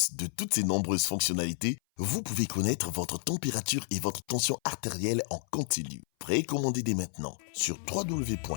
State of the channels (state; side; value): silent; right; 56 dB below the other